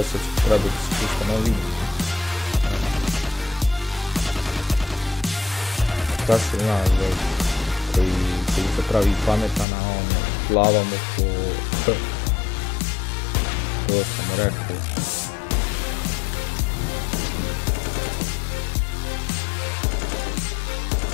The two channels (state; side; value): drops out; right; at 9.7 s